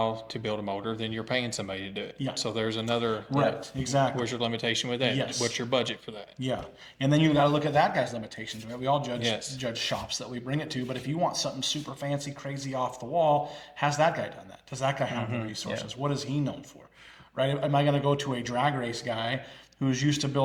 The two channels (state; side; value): identical; both; correlation 1.00